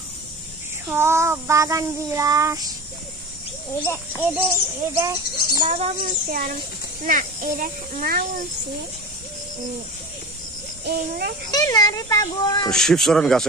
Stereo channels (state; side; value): normal; both; correlation 0.32